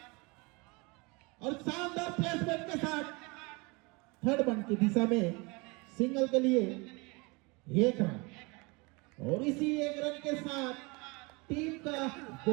और शानदार प्लेसमेंट के साथ थर्ड वन की दिशा में सिंगल के लिए 1 रन और इसी 1 रन के साथ टीम का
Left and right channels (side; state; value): left; quieter; 27.4 dB